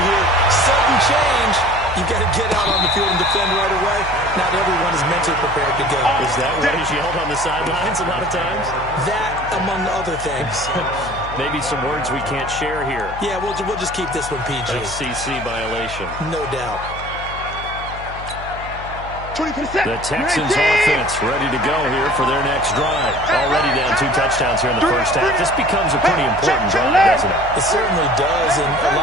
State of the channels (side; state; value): left; noise; hum, 12 dB below the sound